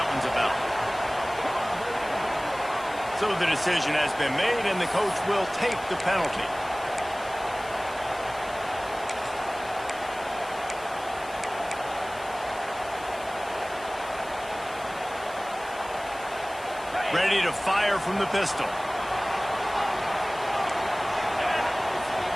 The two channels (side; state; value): left; noise; hiss, 19 dB below the sound